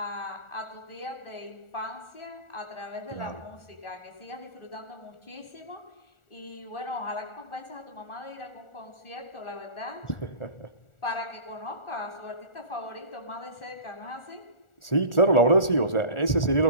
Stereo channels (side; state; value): right; late; 1.4 ms